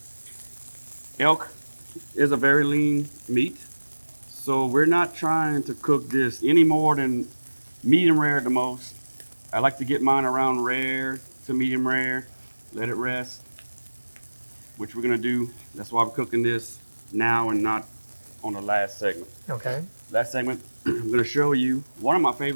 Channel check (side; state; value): both; inverted; correlation -1.00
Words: elk, is a very lean meat. So we're not trying to cook this any more than medium rare at the most. I like to get mine around rare to medium rare, let it rest, which we're gonna do. That's why we're cooking this now and not on the last segment. Okay. Last segment, I'm gonna show you one of my